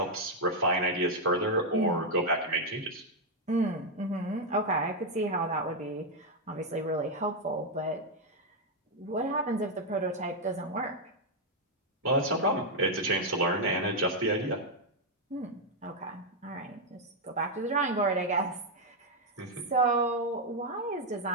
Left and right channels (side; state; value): both; normal; correlation 0.00